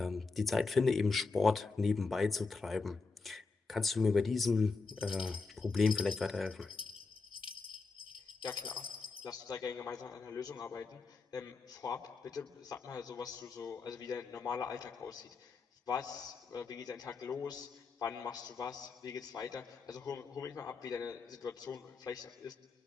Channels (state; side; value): quieter; right; 4.3 dB